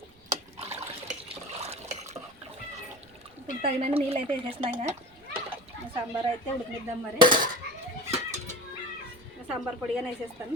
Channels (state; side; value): noise; right; rumble, 28 dB below the sound